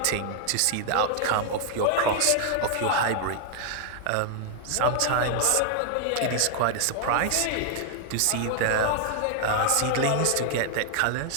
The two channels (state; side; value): different; both; correlation 0.00